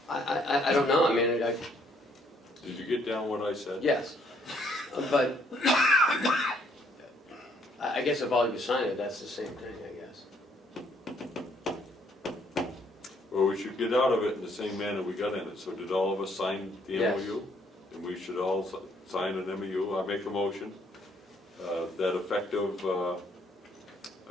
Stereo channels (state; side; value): normal; both; correlation 0.67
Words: I don't know, I mean, Did you get down what I said? yes, but I guess if all you sign it, that's the same thing, I guess. Well, we should get out of it in the same manner we got in it. So did all of us sign the Yes. MOU? And we should all sign an MOU. I make a motion that effective